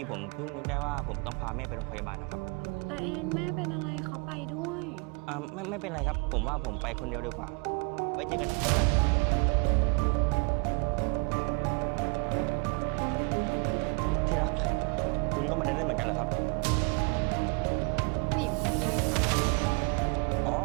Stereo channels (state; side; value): quieter; left; 34.7 dB